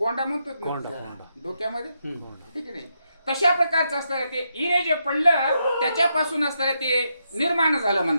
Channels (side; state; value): both; inverted; correlation -0.81